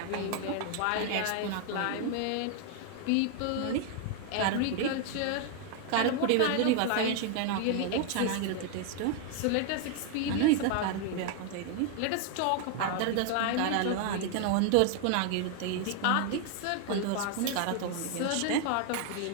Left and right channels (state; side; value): different; both; correlation 0.00